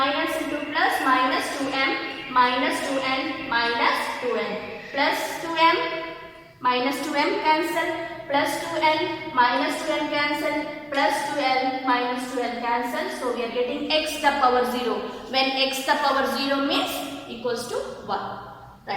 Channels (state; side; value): identical; both; correlation 1.00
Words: into plus, minus 2m minus 2n minus 2n, plus 2m minus 2m cancel, plus 2n minus 2n cancel, plus 2l minus 2l cancel. So we are getting x the power 0. When x the power 0 means equals to 1.